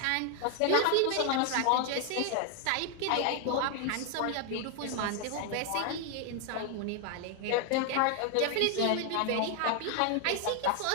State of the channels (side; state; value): both; different; correlation 0.00